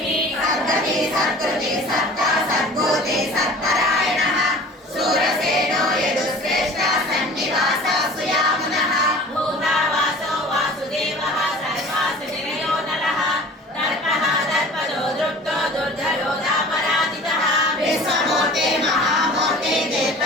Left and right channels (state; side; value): normal; both; correlation 0.43